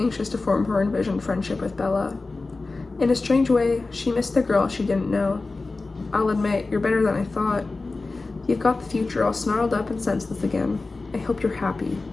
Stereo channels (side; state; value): right; quieter; 3.6 dB